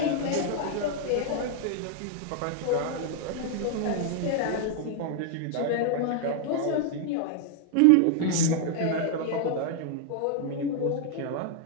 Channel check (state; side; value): different; both; correlation 0.00